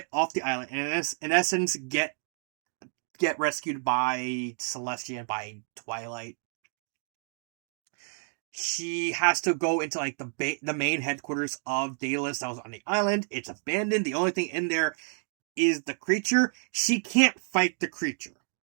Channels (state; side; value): silent; left; 58 dB below the other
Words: off the island, and in essence get rescued by Celestia and by Twilight, she has to go into the main headquarters of Daedalus that was on the island. It's abandoned. The only thing in there is the creature. She can't fight the creature